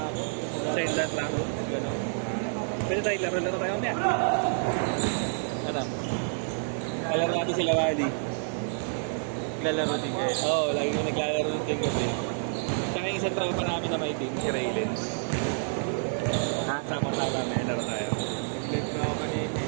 ako. Sa inland lang? Gano'n. Pwede tayo laro tayo mamaya. Ano? Kalaro natin sila Wally. Naglalaro din kayo. Oo, lagi ko naglalaro ng ting gabi. Tsaka yung isang tropa namin na may team, si Raylens. Ha? Sama-sama, may laro tayo. Live na ako kanina.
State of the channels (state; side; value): silent; left; 59 dB below the other